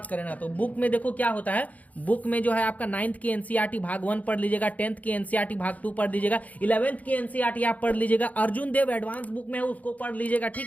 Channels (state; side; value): late; right; 0.074 ms